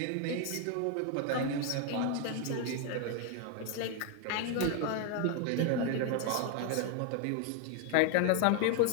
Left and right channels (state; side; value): different; both; correlation 0.00